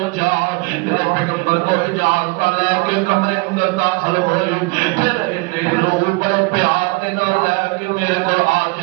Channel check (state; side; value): quieter; left; 26.7 dB